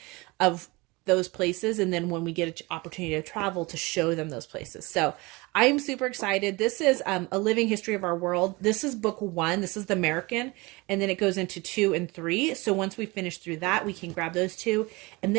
of those places, and then when we get an opportunity to travel, to show them those places. So I'm super excited. This is A Living History of Our World. This is book 1. This is the American, and then it goes into 2 and 3. So once we finish through that, we can grab those 2, and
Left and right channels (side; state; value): left; quieter; 24.2 dB